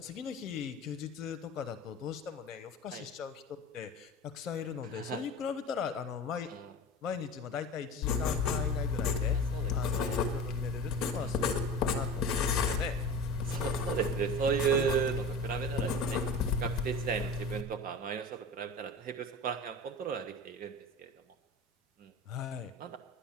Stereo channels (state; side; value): normal; both; correlation 0.32